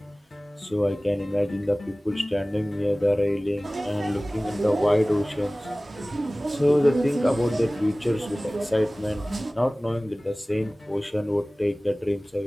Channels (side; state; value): both; normal; correlation 0.98